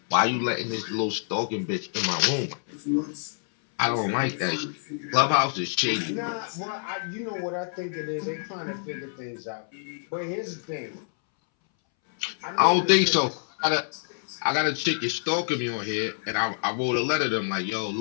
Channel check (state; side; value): silent; right; 60 dB below the other